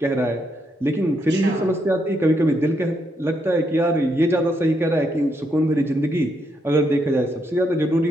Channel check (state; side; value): normal; both; correlation 0.78